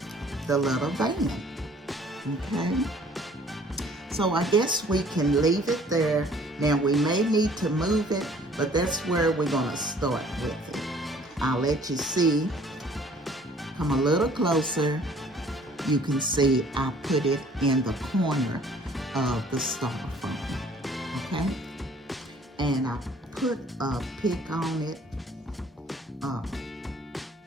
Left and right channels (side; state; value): both; normal; correlation 0.55